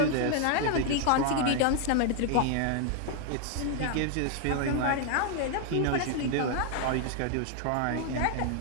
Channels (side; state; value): both; different; correlation 0.00